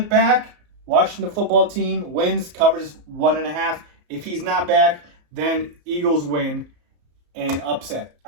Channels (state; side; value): late; left; 34 ms